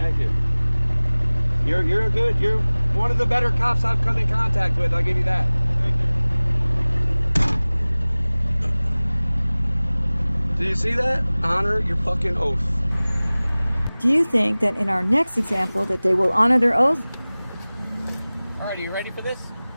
thank you. You're one of the better cops I've come in contact with. I'll give you that. Thank you. Do you see that? Honor your fucking oath. do you think that in our next example that they will honor their oath? Alright, are you ready for this?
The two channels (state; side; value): inverted; both; correlation -0.99